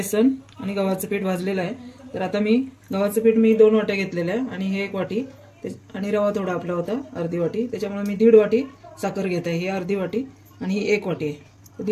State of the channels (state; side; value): identical; both; correlation 1.00